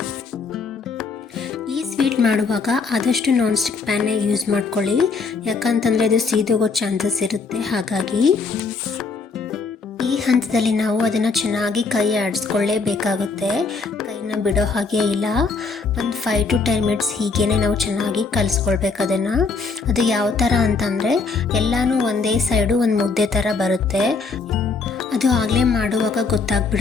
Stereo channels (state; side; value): quieter; right; 4.5 dB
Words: ಈ ಸ್ವೀಟ್ ಮಾಡುವಾಗ ಆದಷ್ಟು ನಾನ್ ಸ್ಟಿಕ್ ಪ್ಯಾನ್ನೇ ಯೂಸ್ ಮಾಡ್ಕೊಳ್ಳಿ. ಯಾಕಂತಂದರೆ ಅದು ಸೀದೋಗೋ ಚಾನ್ಸಸ್ ಇರುತ್ತೆ. ಹಾಗಾಗಿ ಈ ಹಂತದಲ್ಲಿ ನಾವು ಅದನ್ನು ಚೆನ್ನಾಗಿ ಕೈ ಆಡಿಸ್ಕೊಳ್ಳೇಬೇಕಾಗುತ್ತೆ. ಕೈನ ಬಿಡೋ ಹಾಗೆ ಇಲ್ಲ. ಒಂದು 5 to 10 ಮಿನಿಟ್ಸ್ ಹೀಗೇ ನಾವು ಚೆನ್ನಾಗಿ ಕಲಿಸ್ಕೊಳ್ಬೇಕು ಅದನ್ನು. ಅದು ಯಾವ ಥರ ಅಂತಂದರೆ ಎಲ್ಲನೂ ಒಂದೇ ಸೈಡು ಒಂದು ಮುದ್ದೆ ಥರ ಬರುತ್ತೆ. ಅದು ಆಗಲೇ ಮಾಡುವಾಗ